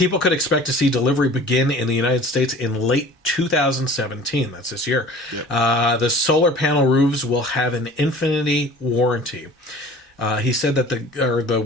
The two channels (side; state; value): both; normal; correlation 0.44